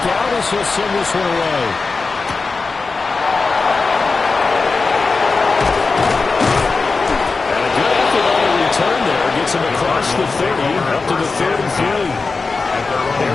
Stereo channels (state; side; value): quieter; right; 4.2 dB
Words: out as he'll send this one away. And a good effort on the return there. Gets him across the 30, up to the 3rd and 3.